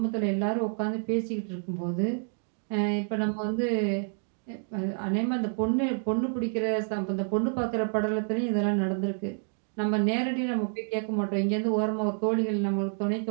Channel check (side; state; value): left; silent; 56 dB below the other